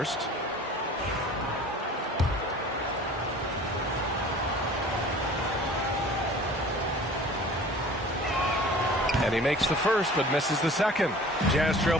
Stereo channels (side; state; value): both; normal; correlation 0.45